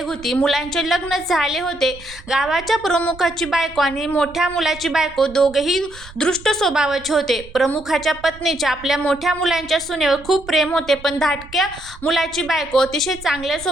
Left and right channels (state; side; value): noise; right; rumble, 19 dB below the sound